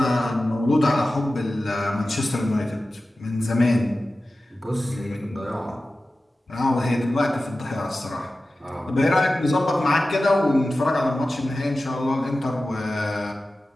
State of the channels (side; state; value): both; normal; correlation 0.95